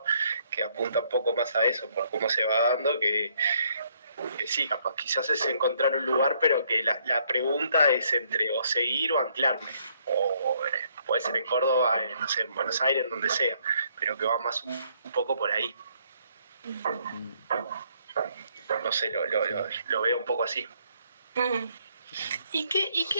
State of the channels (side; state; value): both; inverted; correlation -0.69